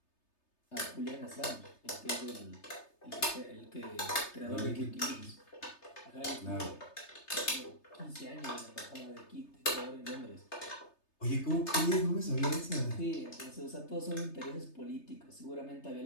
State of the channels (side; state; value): right; late; 3.3 ms